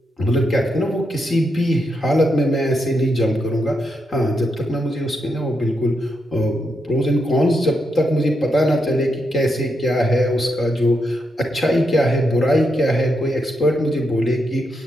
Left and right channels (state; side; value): normal; both; correlation 0.82